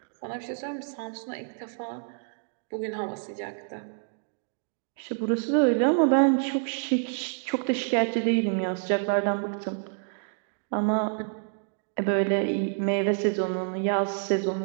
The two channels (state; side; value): silent; left; digital silence